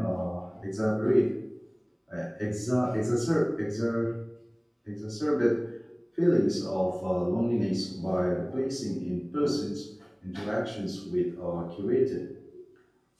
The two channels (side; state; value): both; identical; correlation 1.00